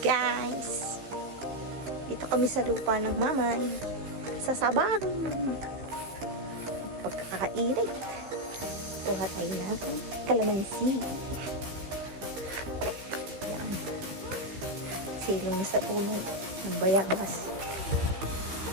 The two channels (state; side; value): late; left; 15 ms